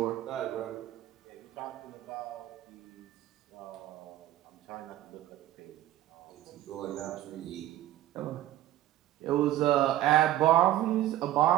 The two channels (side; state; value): left; quieter; 14.1 dB